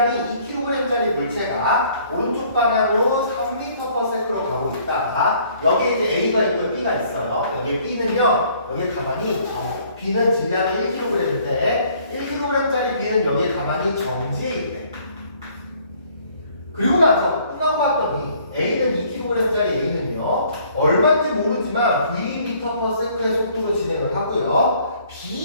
2kg짜리 물체가 오른쪽 방향으로 3m/s로 가고 있다. 여기에 이제 A가 있고 B가 있어요. 여기에 B는요, 여기에 가만히 B는 질량이 1kg인데 1kg짜리 B는 여기에 가만히 정지해 있네. 그리고 나서 끝나고 봤더니 A는 2kg짜리 A는요 얼마인지 모르지만 v/m의 속도로 진행을 하고요.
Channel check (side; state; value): both; inverted; correlation -0.60